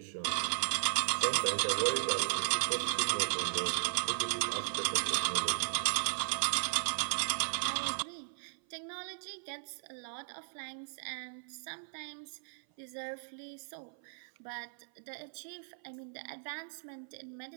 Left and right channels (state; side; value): silent; left; 54 dB below the other